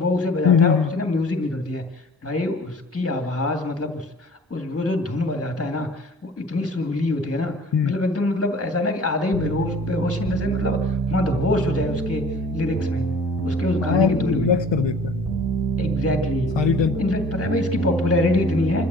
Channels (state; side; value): normal; both; correlation 0.48